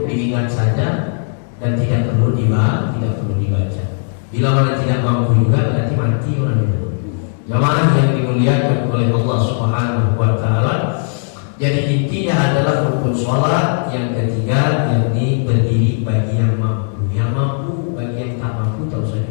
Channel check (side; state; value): right; silent; 63 dB below the other